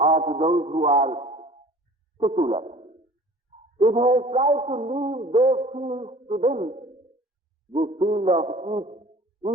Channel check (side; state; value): both; normal; correlation 0.46